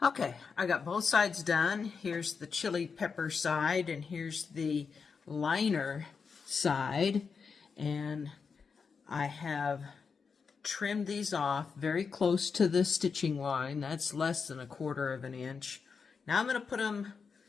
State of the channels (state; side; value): quieter; right; 5.5 dB